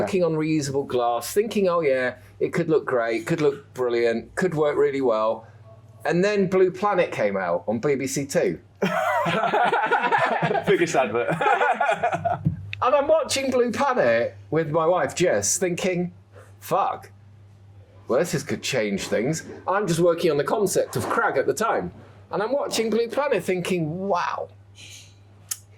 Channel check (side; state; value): both; identical; correlation 1.00